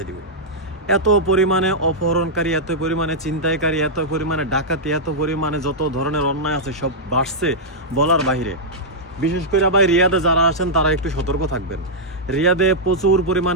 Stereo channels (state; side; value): normal; both; correlation -0.08